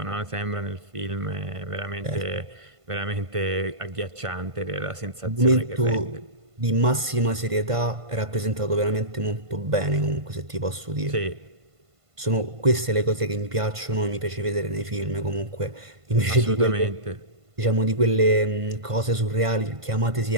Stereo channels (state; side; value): late; left; 1.5 ms